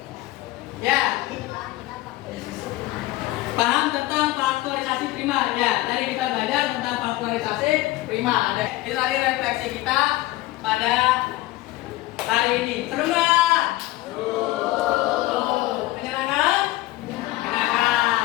Ya. Paham tentang faktorisasi prima. Ya, tadi kita belajar tentang faktorisasi prima. Ada. Itu tadi refleksi kita pada hari ini. Seru nggak? Menyenangkan?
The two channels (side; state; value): right; quieter; 17.6 dB